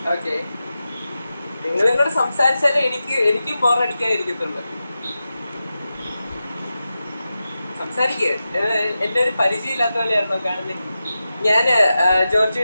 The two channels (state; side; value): inverted; both; correlation -0.92